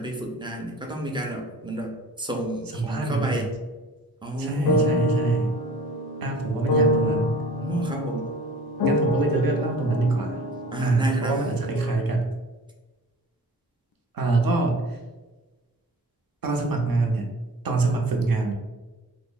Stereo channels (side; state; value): both; normal; correlation 0.45